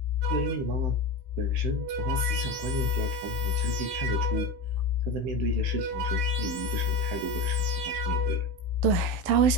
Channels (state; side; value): late; left; 16 ms